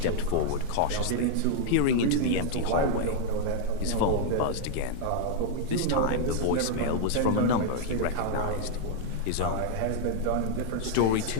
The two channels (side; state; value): both; different; correlation 0.00